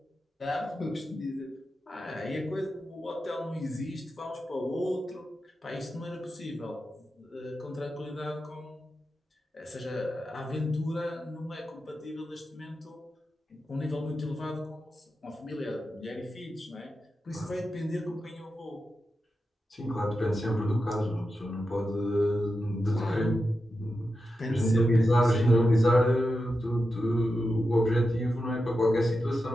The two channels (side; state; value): both; normal; correlation 0.90